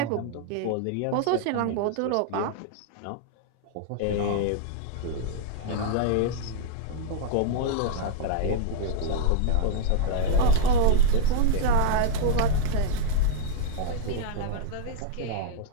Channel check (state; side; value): different; both; correlation -0.01